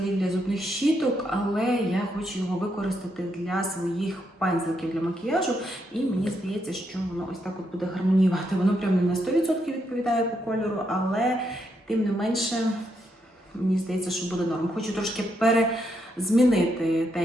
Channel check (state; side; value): normal; both; correlation 0.79